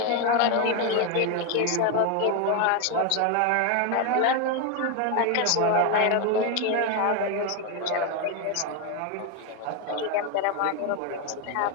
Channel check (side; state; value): both; different; correlation 0.01